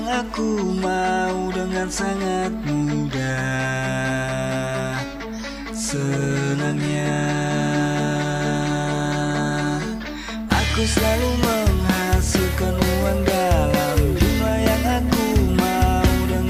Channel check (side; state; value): both; identical; correlation 1.00